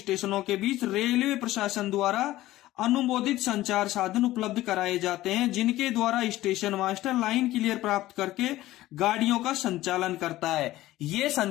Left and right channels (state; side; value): quieter; right; 16.0 dB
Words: के बीच रेलवे प्रशासन द्वारा अनुमोदित संचार साधन उपलब्ध कराए जाते हैं, जिनके द्वारा स्टेशन मास्टर लाइन क्लियर प्राप्त करके गाड़ियों का संचालन करता है। ये